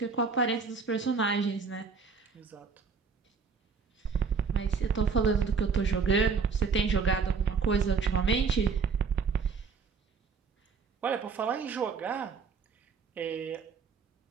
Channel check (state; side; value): quieter; left; 5.2 dB